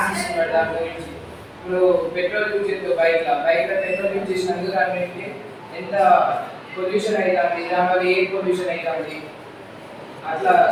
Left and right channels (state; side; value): identical; both; correlation 1.00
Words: ఇస్తున్నాడు. దాని గురించి ఇప్పుడు పెట్రోల్ యూజ్ చేస్తే బైక్లో పెట్రోల్ యూజ్ చేసినందుకు దాని ఎంత పొల్యూషన్ అవుతుంది, దానివల్ల ఎయిర్ పొల్యూషన్ అవుతుంది. అట్లా